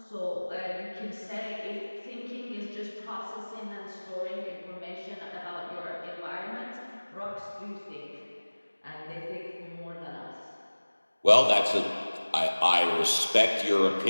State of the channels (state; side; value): inverted; both; correlation -1.00